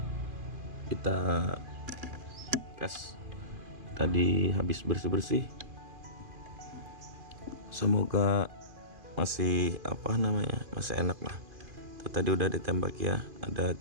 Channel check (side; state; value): left; late; 2.5 ms